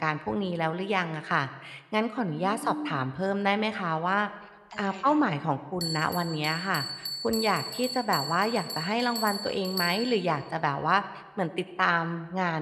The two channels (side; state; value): both; identical; correlation 1.00